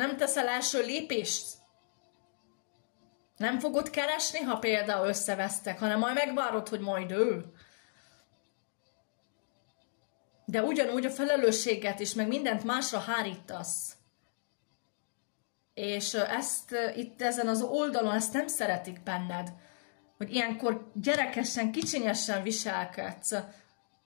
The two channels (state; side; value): silent; right; digital silence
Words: teszel első lépést? Nem fogod keresni, ha például összevesztek, hanem majd megvárod, hogy majd ő. De ugyanúgy a felelősséget is, meg mindent másra hárítasz. És ezt itt ezen az oldalon, ezt nem szeretik benned. Hogy ilyenkor gyerekesen, kicsinyesen viselkedsz.